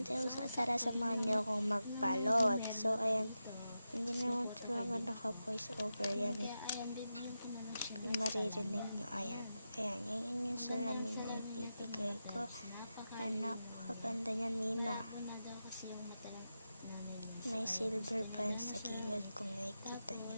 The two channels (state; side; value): inverted; both; correlation -0.90